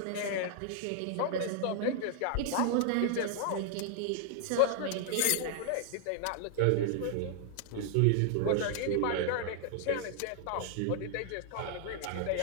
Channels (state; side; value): different; both; correlation 0.00